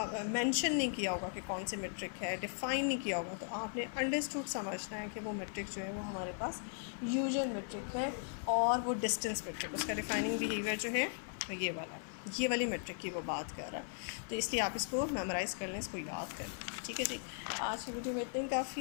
मेंशन नहीं किया होगा कि कौन सी मेट्रिक है, डिफ़ाइन नहीं किया होगा, तो आपने अंडरस्टूड समझना है कि वो मेट्रिक जो है वो हमारे पास यूजुअल मेट्रिक है और वो डिस्टेंस मेट्रिक, उसका डिफाइनिंग बिहेवियर जो है ये वाली मेट्रिक की वो बात कर रहा है। तो इसलिए आप इसको मेमोराइज़ कर लें, इसको याद कर लें। ठीक है जी, आज की वीडियो में इतना ही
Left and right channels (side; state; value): right; silent; 52 dB below the other